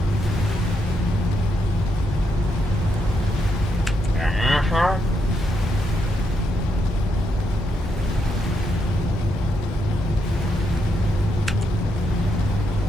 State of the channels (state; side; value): noise; left; hum, 11 dB below the sound